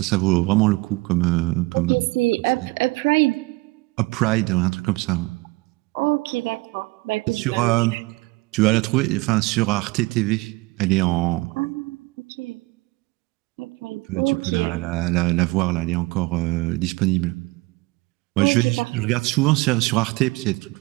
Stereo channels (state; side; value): quieter; left; 23.1 dB